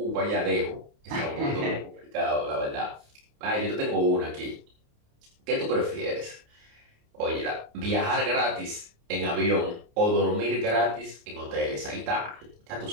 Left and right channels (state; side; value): late; left; 28 ms